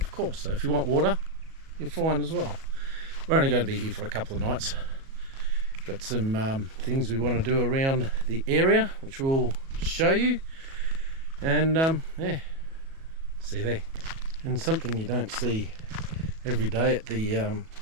course. So if you want water, you're fine as well. We're only going to be here for a couple of nights. Got some things we want to do around the area, which we'll show you. And yeah, see there. And something you don't see every day at the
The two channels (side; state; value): left; late; 37 ms